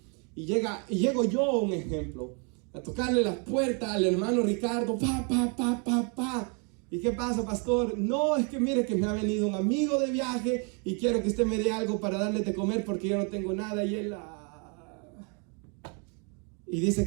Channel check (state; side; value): quieter; left; 37.0 dB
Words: y llego yo, un ejemplo, a tocarle la puerta al hermano Ricardo, pa. ¿Y qué pasa, pastor? No, es que mire que me ha venido un amigo de viaje y quiero que usted me dé algo para darle de comer porque yo no tengo nada. Y él y dice